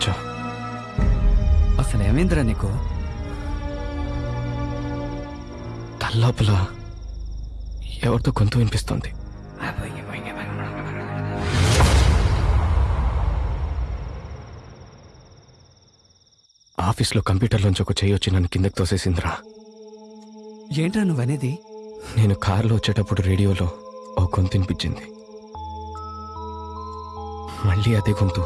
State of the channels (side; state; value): both; identical; correlation 1.00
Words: అసలు ఏమైందిరా నీకు? తల్లోపల ఎవరితో గొంతు వినిపిస్తోంది. ఆఫీస్లో కంప్యూటర్లోంచి ఒక చెయ్యి వచ్చి నన్ను కిందకి తోసేసిందిరా. ఏంట్రా నువ్వనేది? నేను కారులో వచ్చేటప్పుడు రేడియోలో ఓ గొంతు వినిపించింది. మళ్ళీ అదే గొంతు,